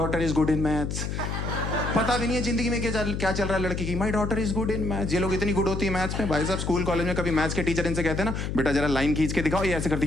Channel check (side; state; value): left; noise; hum, 3 dB below the sound